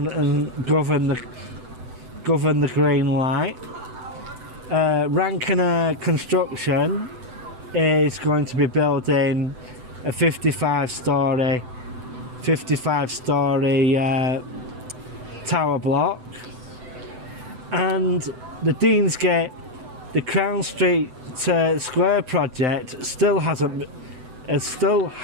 and governed the green light. Rankiner Construction is going to be building a 55-storey tower block, and the Deansgate, the Crown Street Square project still hasn't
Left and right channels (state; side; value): late; left; 7.9 ms